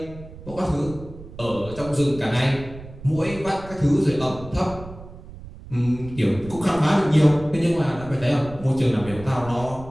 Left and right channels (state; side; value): noise; right; rumble, 15 dB below the sound